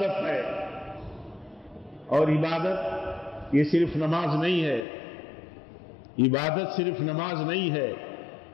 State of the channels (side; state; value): right; drops out; at 4.9 s